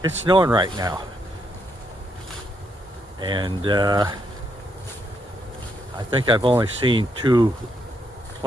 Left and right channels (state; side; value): normal; both; correlation 0.77